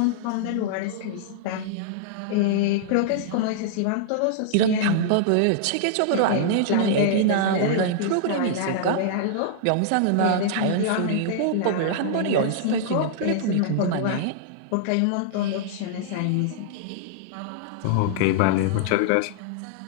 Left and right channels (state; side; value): different; both; correlation -0.01